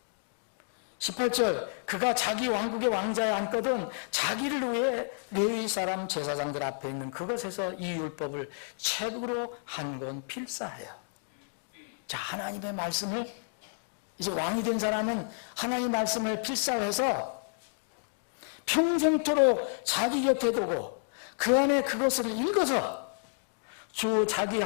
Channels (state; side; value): silent; right; digital silence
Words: 18절 그가 자기 왕국의 왕자에 앉거든 자기를 위해 레위 사람 제사장들 앞에 있는 그것에서 이 율법을 책으로 한 권 필사하여. 자, 하나님의 말씀을 이제 왕이 된 사람은 하나님의 말씀을 필사해서 평생토록 자기 곁에 두고 그 안에 그것을 읽어서 주 자기